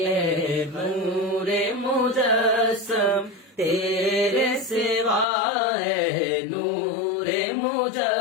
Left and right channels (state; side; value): drops out; right; at 5.2 s